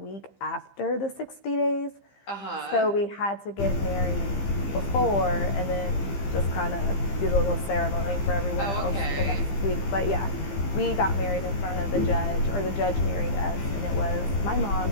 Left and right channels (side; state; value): right; late; 15 ms